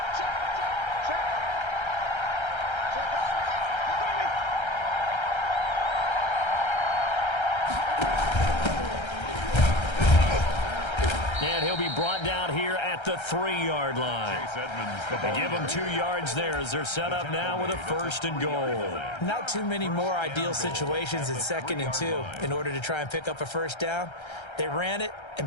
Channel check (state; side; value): late; right; 1.3 ms